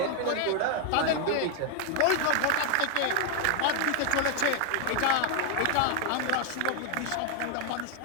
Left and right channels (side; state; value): both; different; correlation 0.00